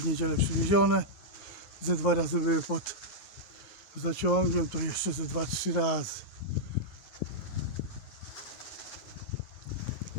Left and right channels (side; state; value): right; late; 9.3 ms